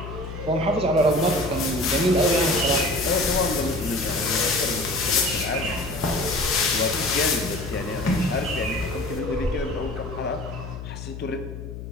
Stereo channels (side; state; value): left; noise; hum, 10 dB below the sound